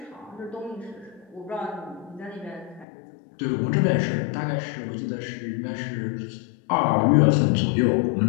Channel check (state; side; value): drops out; right; at 2.9 s